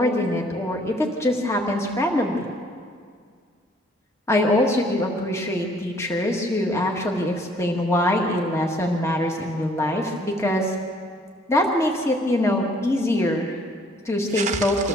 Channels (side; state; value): both; normal; correlation 0.61